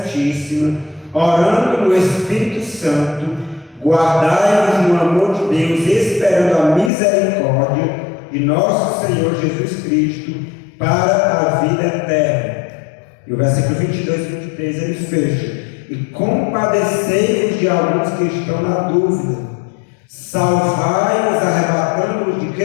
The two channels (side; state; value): right; drops out; at 6.9 s